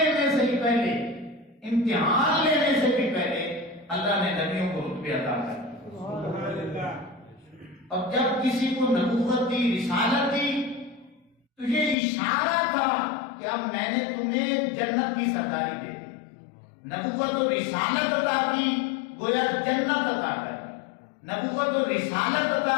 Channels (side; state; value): right; drops out; at 12.0 s